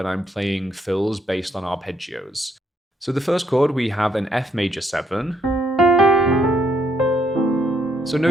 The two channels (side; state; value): both; normal; correlation 0.71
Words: I'm playing fills based on arpeggios. So the first chord, we have an F major 7. So